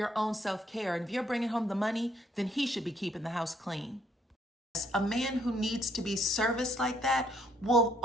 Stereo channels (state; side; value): normal; both; correlation 0.68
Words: own self-care. And if you're bringing home the money, then he should be keeping the house clean. A man who needs to be serviced like that will